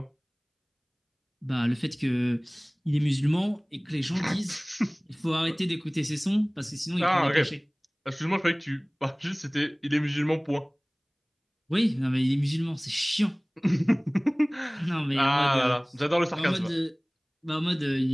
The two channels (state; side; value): identical; both; correlation 1.00